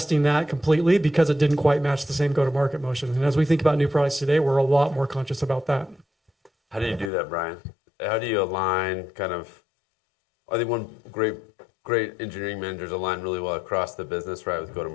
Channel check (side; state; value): right; drops out; at 7.1 s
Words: that completely because it didn't quite match the same go-to-market motion. And as we think about new products today, we're a lot more conscious about that. How do you do that, Brian? How do you align kind of, I think one great engineering managers align really well across the business, right, with